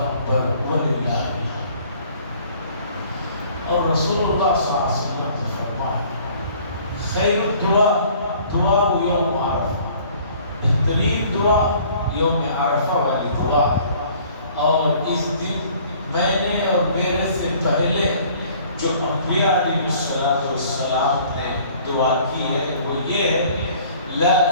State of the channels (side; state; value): both; inverted; correlation -0.54